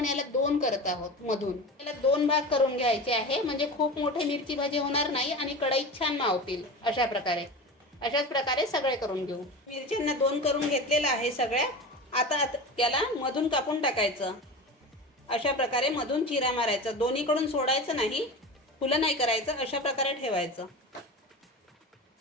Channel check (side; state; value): both; normal; correlation 0.29